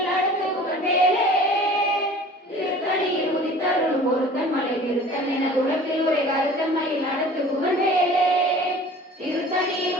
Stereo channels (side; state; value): both; normal; correlation 0.45